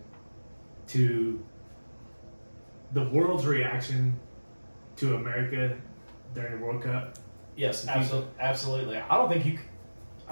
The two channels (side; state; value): both; inverted; correlation -1.00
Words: to the world's reaction to America during the World Cup? Yes, absolutely. I don't think